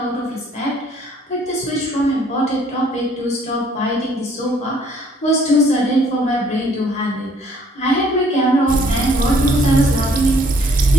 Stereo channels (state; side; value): normal; both; correlation 0.61